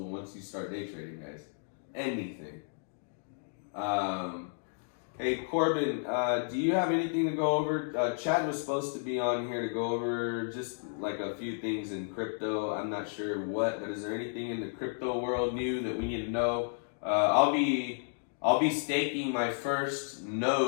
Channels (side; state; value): right; silent; digital silence